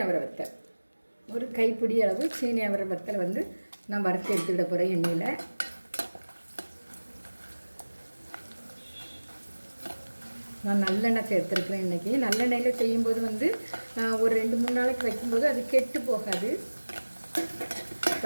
அவரை வத்தல், ஒரு கைப்பிடி அளவு சீனி அவரை வத்தல் வந்து நான் வறுத்து எடுத்துக்கிட போகிறேன் எண்ணெயில். நான் நல்லெண்ணெய் சேர்த்துருக்குறேன். இன்றைக்கி நல்லெண்ணெயில் செய்யும்போது வந்து ஒரு 2-3 நாளைக்கு வைக்கும்போது அது கெட்டு போகாது.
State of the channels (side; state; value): both; inverted; correlation -1.00